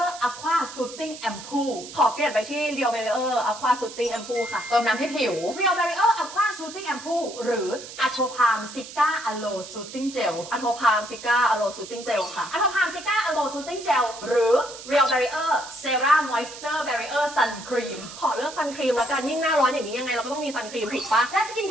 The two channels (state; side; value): noise; right; hiss, 13 dB below the sound